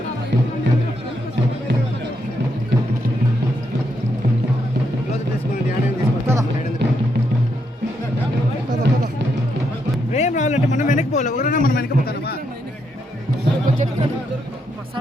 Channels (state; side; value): normal; both; correlation 0.79